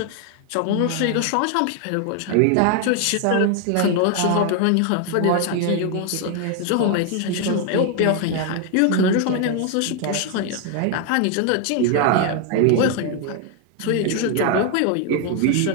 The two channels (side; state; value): both; different; correlation 0.00